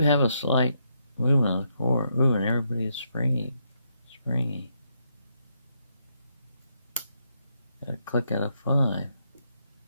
a slight movement on the core. Ooh, and everybody is springy. Got a click out of 5.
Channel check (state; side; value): inverted; both; correlation -0.78